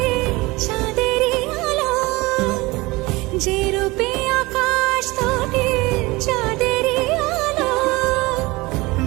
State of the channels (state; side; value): quieter; left; 22.3 dB